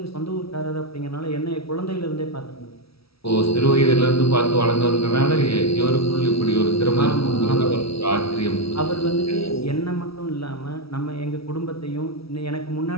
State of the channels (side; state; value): right; late; 0.76 ms